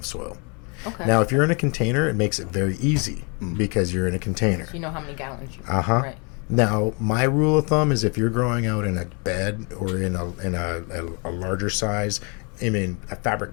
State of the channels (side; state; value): right; quieter; 34.2 dB